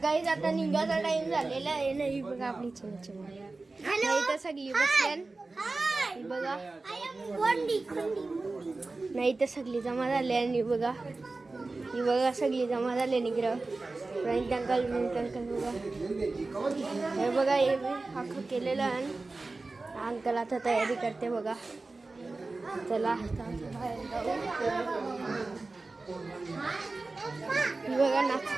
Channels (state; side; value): quieter; left; 3.5 dB